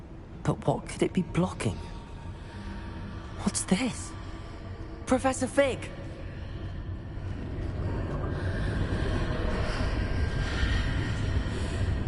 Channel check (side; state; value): both; identical; correlation 1.00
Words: But what could it be blocking? What's this? Professor Fig!